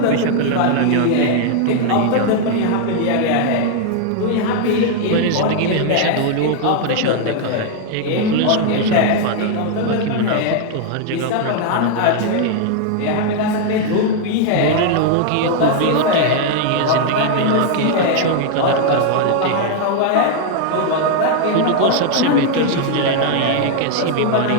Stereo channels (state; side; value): different; both; correlation 0.00